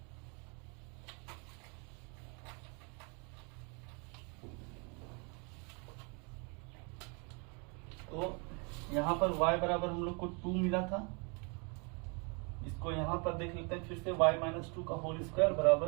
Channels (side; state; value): left; quieter; 33.7 dB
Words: तो यहाँ पर y बराबर हम लोग को 2 मिला था, इसको यहाँ पर देख लेते हैं फिर से, y-2 का होल स्क्वायर बराबर